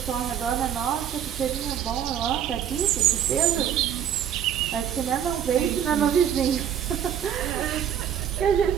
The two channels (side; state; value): left; quieter; 9.5 dB